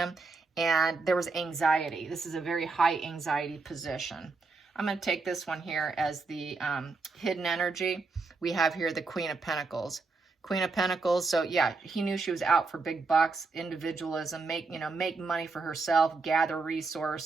And there was anxiety. This is a very high anxiety position. I'm going to take this one here as the hidden energy. We have here the Queen of Pentacles. Queen of Pentacles. So yeah, he knew she was out for big bucks, individualism, make money for herself, gather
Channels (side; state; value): left; quieter; 4.0 dB